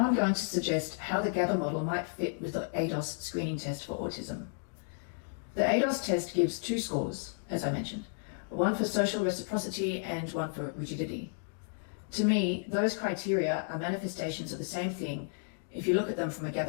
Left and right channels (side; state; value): right; silent; digital silence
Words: I'm going to suggest how the GABA model might fit with the ADOS screening test for autism. The ADOS test gives 2 scores, as I mentioned, one for social reciprocity and one for rigidity. To me, those criteria are manifestations of the same thing if you look at them from a